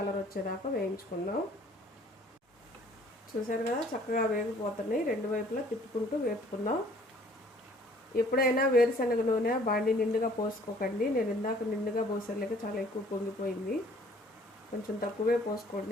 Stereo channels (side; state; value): both; normal; correlation 0.57